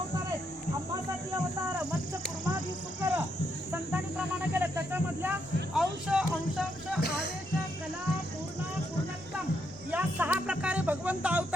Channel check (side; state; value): both; normal; correlation 0.78